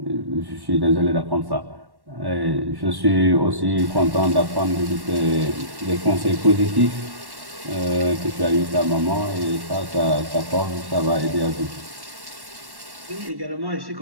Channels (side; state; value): left; late; 1.1 ms